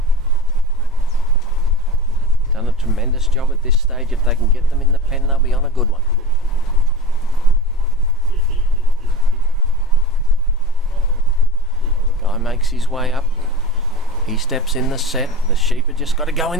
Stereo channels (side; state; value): both; normal; correlation 0.31